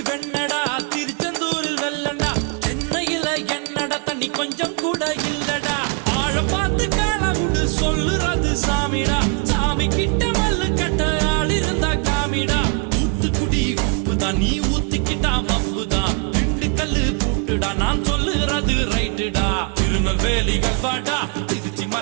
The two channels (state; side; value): quieter; left; 37.9 dB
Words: வெண்ணடா திருச்செந்தூரில் வெள்ளடா சென்னையில என்னடா தண்ணி கொஞ்சம் கூட இல்லடா ஆழ பார்த்து காலவுடு சொல்லுறது சாமிடா சாமி கிட்ட மல்லு கட்ட ஆள் இருந்தா காமிடா ஊத்துக்குடி உப்புதான் நீ ஊத்திக்கிட்டா மப்புதான் திண்டுக்கல்லு பூட்டுடா நான் சொல்லுறது ரைட்டுடா திருநெல்வேலி கல்வாடா திருச்சி